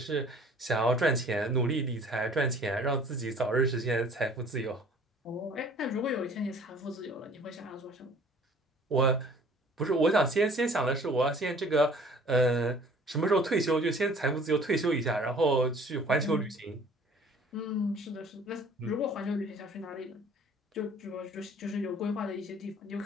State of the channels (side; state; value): both; normal; correlation 0.52